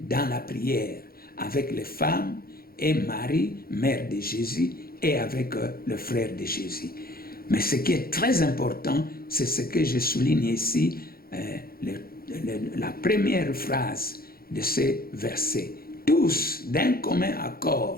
dans la prière avec les femmes et Marie, mère de Jésus, et avec le frère de Jésus. Mais ce qui est très important, c'est ce que je souligne ici, la première phrase de ce verset. Tous, d'un commun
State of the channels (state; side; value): late; right; 0.44 ms